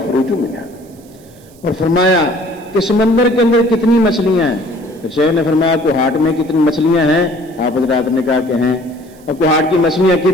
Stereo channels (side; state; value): right; noise; hiss, 28 dB below the sound